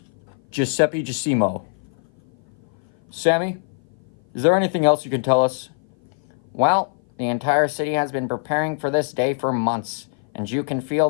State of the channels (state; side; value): silent; right; 56 dB below the other